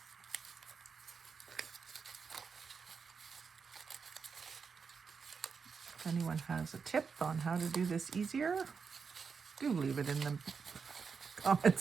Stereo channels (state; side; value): quieter; left; 5.6 dB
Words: If anyone has a tip on how to do this easier, do leave it in the